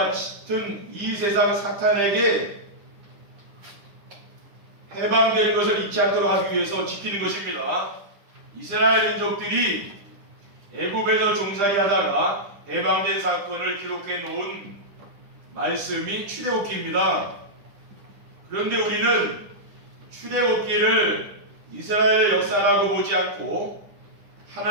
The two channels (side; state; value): left; late; 10 ms